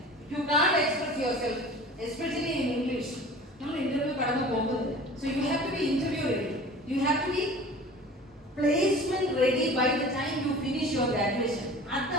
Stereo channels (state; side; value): normal; both; correlation 0.41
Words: You can't express yourself especially in English. നമ്മൾ ഇന്റർവ്യൂ കടന്നു പോകുന്നത്. So you have to be interview ready. You have to be placement ready by the time you finish your graduation.